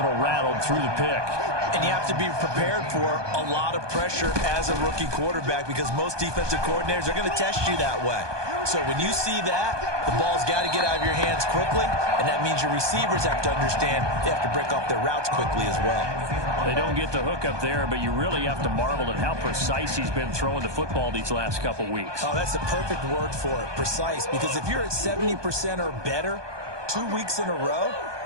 rattled through the pick. And you have to be prepared for a lot of pressure as a rookie quarterback because most defensive coordinators are going to test you that way. So when you see that, the ball's got to get out of your hands quickly, and that means your receivers have to understand they have to break off their routes quickly as well. They don't get the hook up there, but you really have to marvel at how precise he's been throwing the football these last couple weeks. Oh, that's the perfect word for it, precise, because if you're at 70% or better 2 weeks in a row,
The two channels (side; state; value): left; late; 1.2 ms